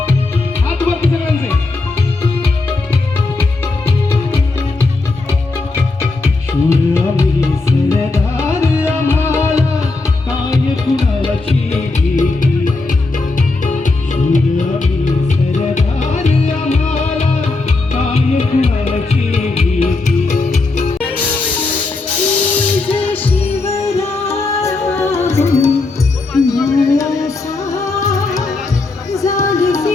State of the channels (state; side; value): quieter; right; 3.5 dB